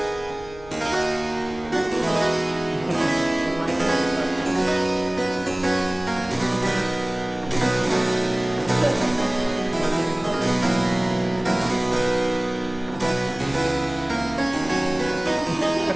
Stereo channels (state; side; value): noise; left; hum, 21 dB below the sound